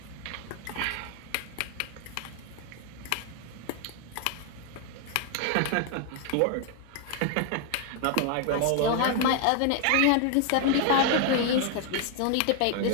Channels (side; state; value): both; different; correlation 0.01